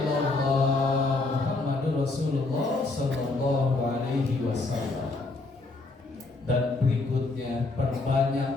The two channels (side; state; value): right; quieter; 3.4 dB